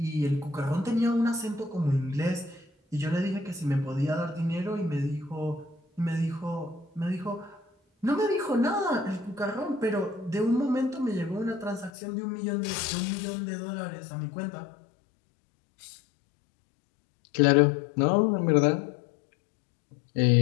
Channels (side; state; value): right; drops out; at 11.9 s